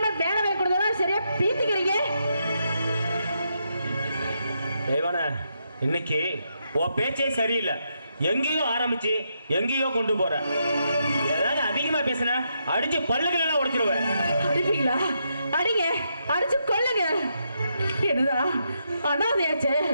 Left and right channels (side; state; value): both; inverted; correlation -0.81